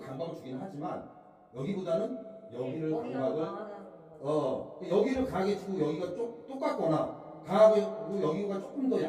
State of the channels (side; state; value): both; identical; correlation 1.00